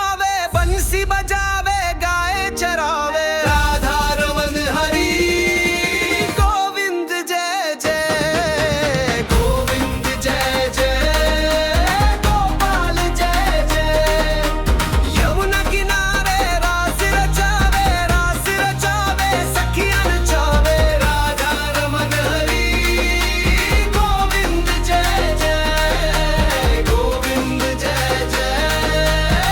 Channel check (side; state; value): both; identical; correlation 1.00